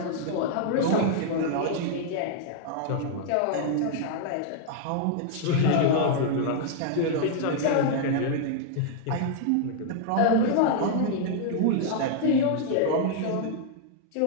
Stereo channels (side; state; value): both; different; correlation -0.01